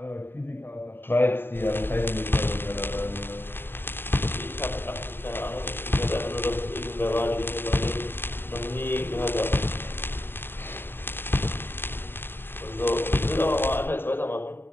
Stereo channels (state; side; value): late; right; 0.10 ms